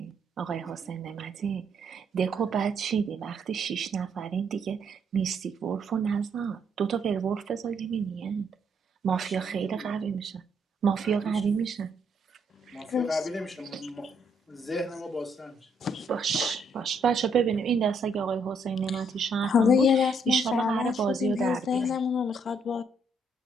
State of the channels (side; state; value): both; normal; correlation 0.71